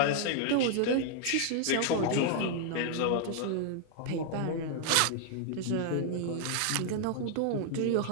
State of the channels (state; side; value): different; both; correlation 0.00